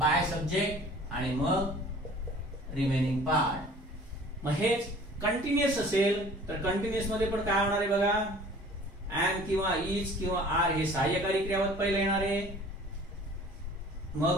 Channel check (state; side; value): normal; both; correlation 0.48